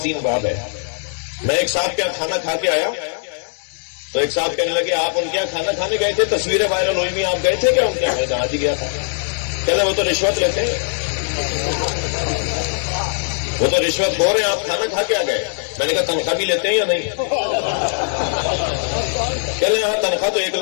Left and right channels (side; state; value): right; silent; digital silence